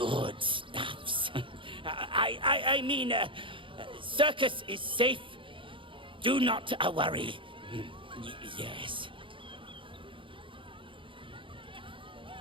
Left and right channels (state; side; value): late; left; 0.25 ms